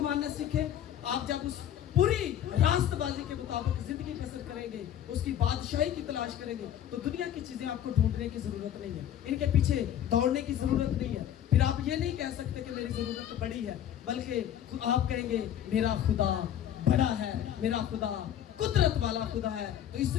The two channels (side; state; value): right; quieter; 10.5 dB